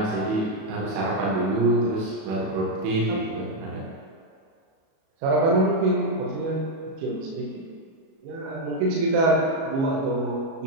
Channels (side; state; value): left; late; 37 ms